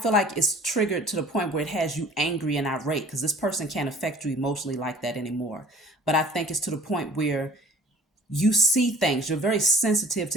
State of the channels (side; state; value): both; normal; correlation 0.50